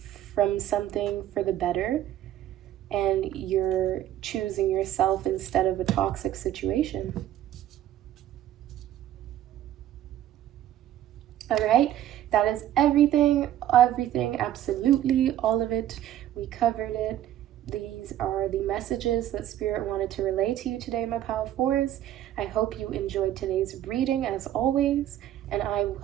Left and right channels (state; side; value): quieter; left; 12.2 dB